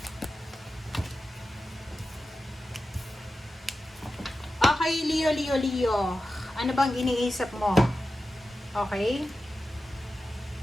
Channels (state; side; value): normal; both; correlation 0.93